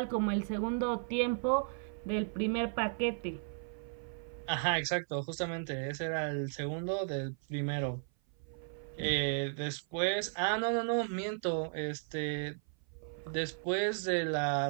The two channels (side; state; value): left; silent; 54 dB below the other